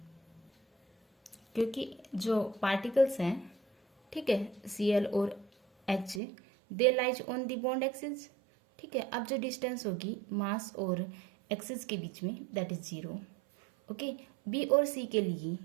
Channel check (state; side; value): drops out; left; at 6.2 s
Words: क्योंकि जो पार्टिकल्स हैं, ठीक है, Cl और H they lies on the bond axis, ठीक है। अब जो डिस्टेंस होगी मास और एक्सिस के बीच में दैट इज 0, ओके। बी और सी के लिए